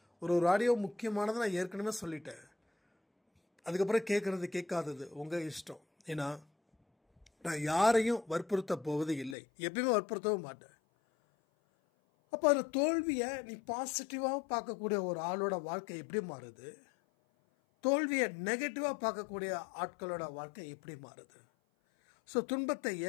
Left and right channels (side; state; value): right; drops out; at 9.3 s